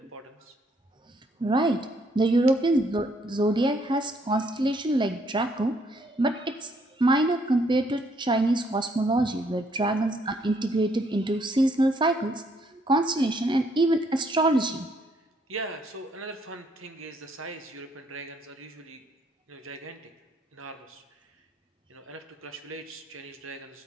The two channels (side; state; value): both; normal; correlation 0.69